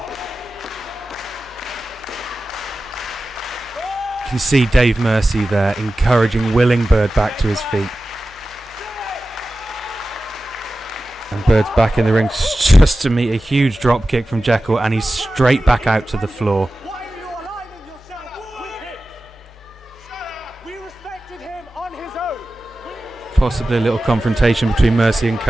You can see Dave Mercy there encouraging, willing Bird back to his feet. And Bird's back in the ring just to meet a huge drop kick from Jekyll, and he's straight back out to the floor. Why are you aligning yourself with him? We respected him on his own. Possibly a little confrontation between Mercy and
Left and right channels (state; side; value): normal; both; correlation 0.95